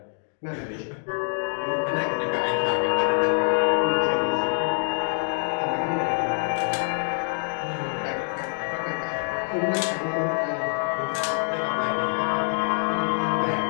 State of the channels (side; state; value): right; silent; digital silence